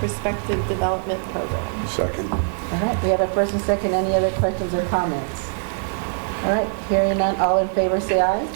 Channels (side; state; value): left; silent; digital silence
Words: Development Program. Second. All right, we have a first and second. Any other questions or comments? All right, hearing none, all in favor say aye.